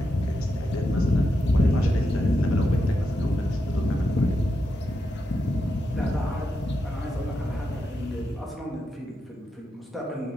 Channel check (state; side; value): normal; both; correlation 0.86